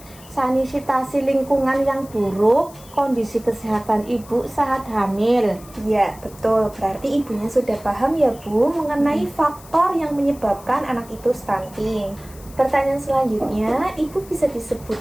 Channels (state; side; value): noise; left; hiss, 21 dB below the sound